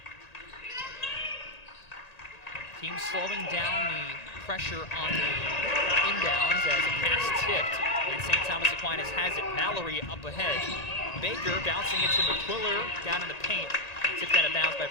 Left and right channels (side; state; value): right; late; 1.9 ms